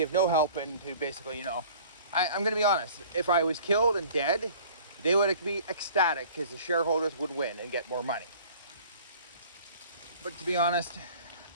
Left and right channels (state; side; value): inverted; both; correlation -0.48